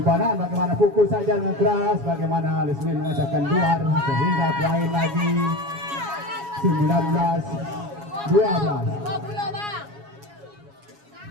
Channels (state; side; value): late; left; 7.2 ms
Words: bagaimana pukul saja dengan keras bagaimana Lesmin mengacakkan luar sehingga poin lagi